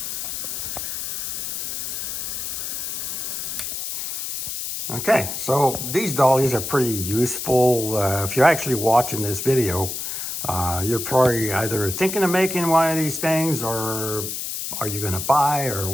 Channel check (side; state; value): left; noise; hiss, 4 dB below the sound